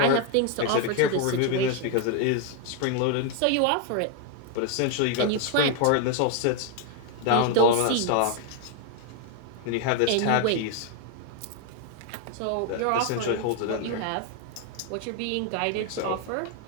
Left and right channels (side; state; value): both; different; correlation 0.01